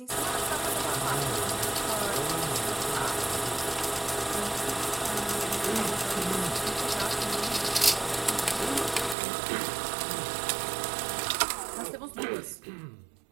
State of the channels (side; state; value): left; drops out; at 9.2 s